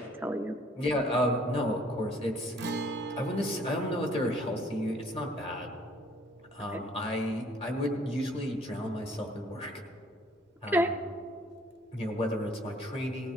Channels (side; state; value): both; normal; correlation 0.59